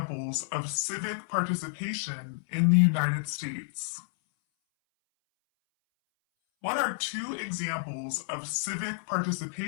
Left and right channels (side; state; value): right; silent; 58 dB below the other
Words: of civic participation in the United States? What are two examples of civic